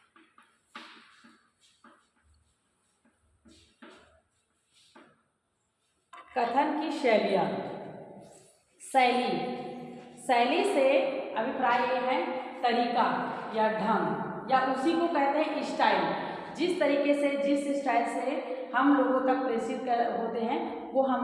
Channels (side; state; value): both; identical; correlation 1.00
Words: कथन की शैलियाँ। शैली, शैली से अभिप्राय ये है तरीका या ढंग, या उसी को कहते हैं स्टाइल। जिस तरीके से, जिस स्टाइल से हम लोगों तक प्रेषित होते हैं वो